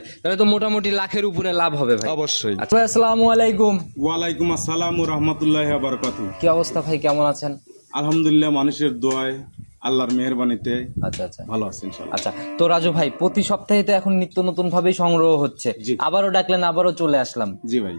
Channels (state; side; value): inverted; both; correlation -1.00